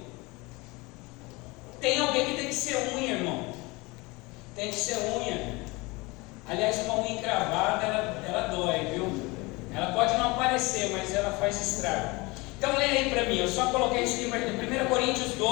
Tem alguém que tem que ser unha, irmão. Tem que ser unha. Aliás, uma unha encravada, ela dói, viu? Ela pode não aparecer, mas ela faz estrago. Então leia aí para mim, eu só coloquei isso em 1 Coríntios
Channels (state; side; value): quieter; right; 24.4 dB